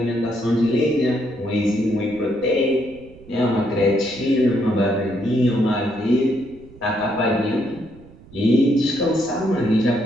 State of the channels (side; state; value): right; noise; rumble, 23 dB below the sound